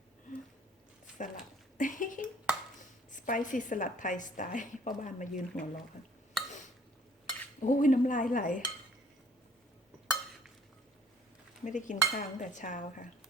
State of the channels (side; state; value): both; normal; correlation 0.57